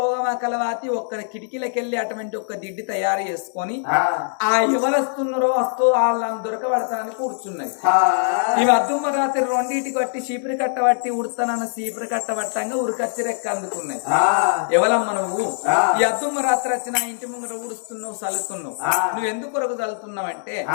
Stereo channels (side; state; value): right; silent; digital silence